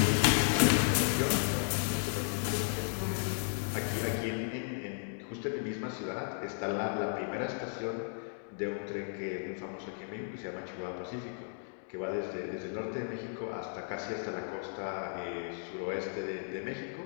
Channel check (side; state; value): right; silent; digital silence